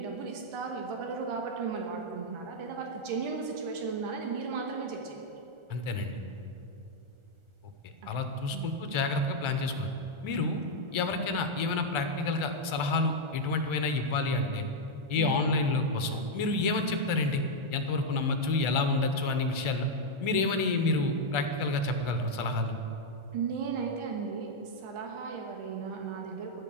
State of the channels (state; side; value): late; left; 1.4 ms